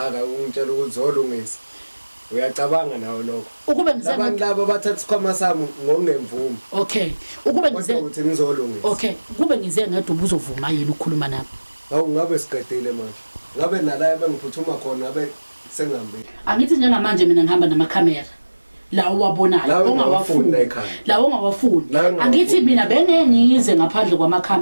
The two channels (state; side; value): inverted; both; correlation -1.00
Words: ungitshela ukuthi zolungisa. Uyacabanga nawo lokho. Ukube ngize abantu laba bathatha isikhwama sami ngokungemvumo. Okay. Ukube ngize ukuthi ngizolungisa. Okay. Kube ngize ngedwa ubuzovuma yini ukukhuluma nami? Hawu ngabe siqedile manje. Ngabe nala bengiphuthuma khona ngabe sengihambe. Angithi njengamanje mina ngihamba namakhamera. La uwabonayo ongawafuni la ongawafuni angithi mina bengengize ngaphandle